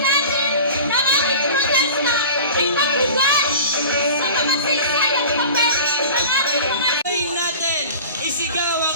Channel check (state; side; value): inverted; both; correlation -0.38